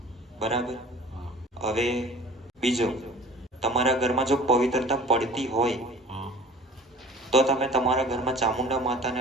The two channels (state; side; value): normal; both; correlation 0.44